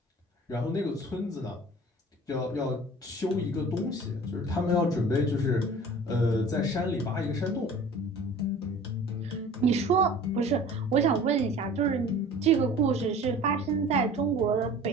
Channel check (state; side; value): normal; both; correlation 0.44